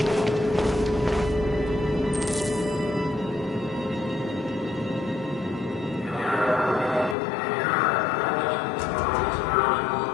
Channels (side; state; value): right; drops out; at 7.2 s